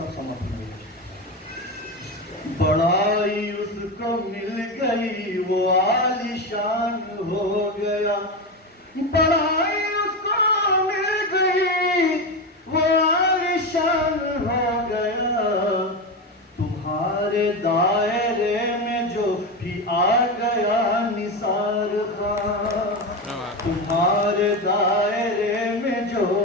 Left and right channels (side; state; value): both; normal; correlation 0.17